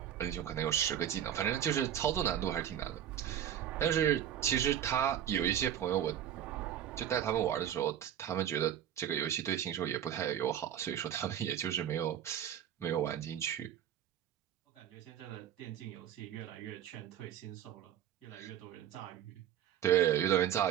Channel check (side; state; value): left; quieter; 10.2 dB